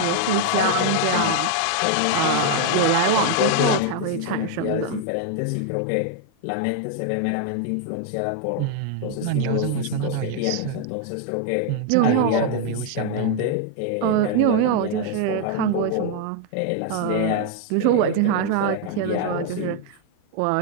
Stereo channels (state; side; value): different; both; correlation 0.00